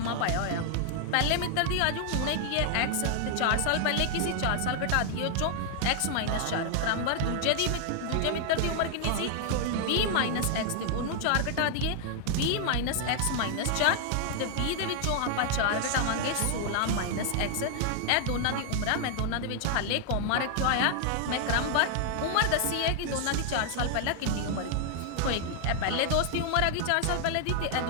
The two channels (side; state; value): both; different; correlation 0.00